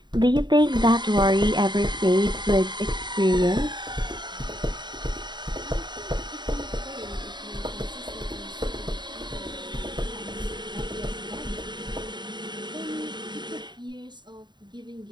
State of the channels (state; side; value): late; left; 0.22 ms